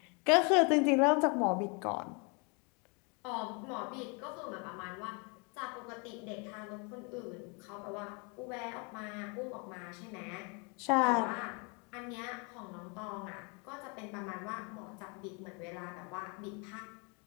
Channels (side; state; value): right; quieter; 33.3 dB